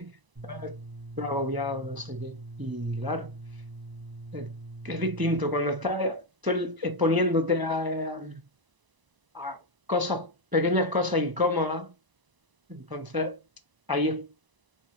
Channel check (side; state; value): left; late; 1.0 ms